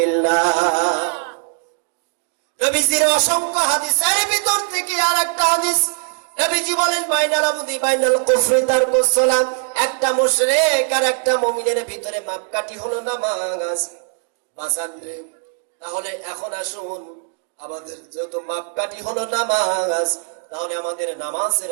নবীজির অসংখ্য হাদিসের ভিতর থেকে আরেকটা হাদিস, নবীজি বলেন বাইনাল আবদি বাইনাল কুফরি তারকুস সালাত, একটা মুশরিক আর একটা মুমিনের ভিতরে মাপকাঠি হলো নামাজ। বাজান রে, তাহলে এখন আসুন, আমাদের যত মাপকাঠি হলো নামাজ, তাহলে আমাদের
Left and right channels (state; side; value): silent; left; 65 dB below the other